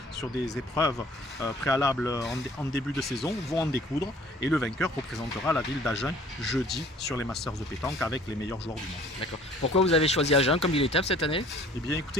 sur des épreuves préalables en début de saison, vont en découdre et le vainqueur représentera la ville d'Agen jeudi sur les Masters de pétanque avec les meilleurs joueurs du monde. D'accord. Pourquoi vous avez choisi Agen comme ville étape cette année? Eh bien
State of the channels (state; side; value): normal; both; correlation 0.52